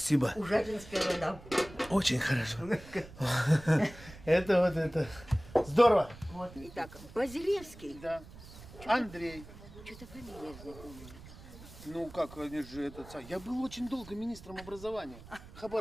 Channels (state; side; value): noise; right; rumble, 17 dB below the sound